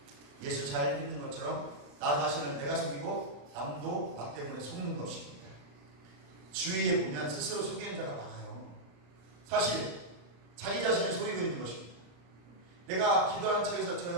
예수 잘 믿는 것처럼 나 자신을 내가 속이고 남도 나 때문에 속는 것입니다. 주위에 보면 스스로 속이는 자가 많아요. 사실 자기 자신을 속이고 있는 것입니다. 내가 기도하는 척에서 저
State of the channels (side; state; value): left; late; 35 ms